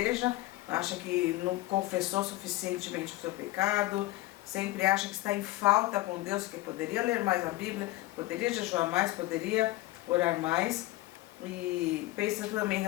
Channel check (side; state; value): right; quieter; 17.9 dB